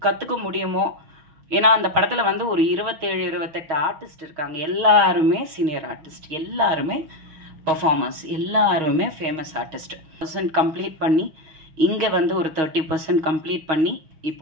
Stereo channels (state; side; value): late; left; 6.4 ms